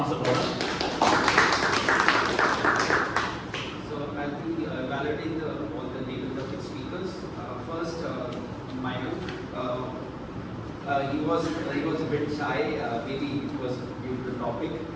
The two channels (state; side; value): identical; both; correlation 1.00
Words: Gaurav. I'll be evaluating all the table topic speakers. First, Manu. He was a bit shy. Maybe it was due to the topic.